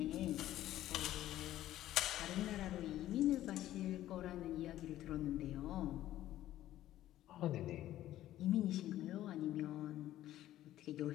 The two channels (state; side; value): quieter; right; 13.6 dB